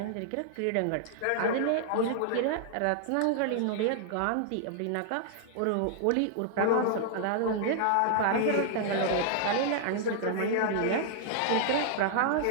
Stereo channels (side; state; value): both; different; correlation -0.01